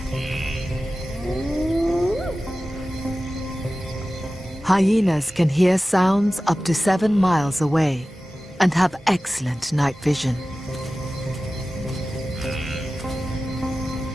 Hyenas can hear sounds up to 7 miles away and have excellent night vision.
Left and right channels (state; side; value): normal; both; correlation 0.96